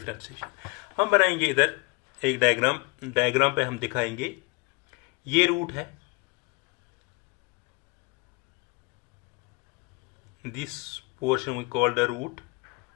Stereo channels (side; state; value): right; quieter; 26.7 dB